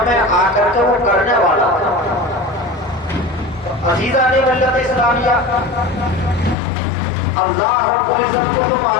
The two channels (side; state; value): right; drops out; at 6.6 s